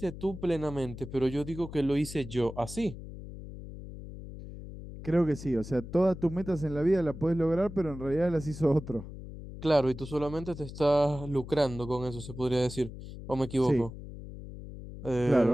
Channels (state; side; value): noise; left; hum, 12 dB below the sound